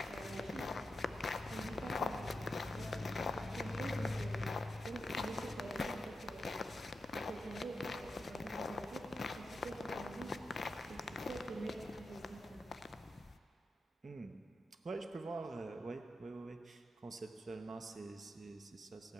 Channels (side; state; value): both; normal; correlation 0.88